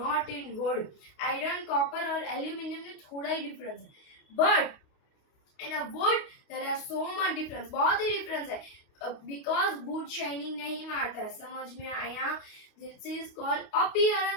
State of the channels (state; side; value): late; right; 28 ms